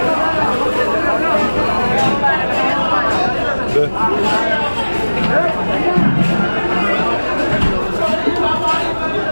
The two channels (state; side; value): inverted; both; correlation -1.00